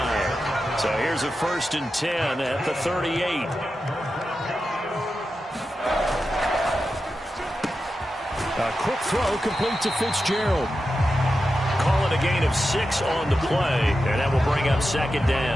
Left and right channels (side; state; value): both; normal; correlation 0.91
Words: So here's a 1st and 10 at the 38. A quick throw complete to Fitzgerald. Call it a gain of 6 on the play, and that will bring up second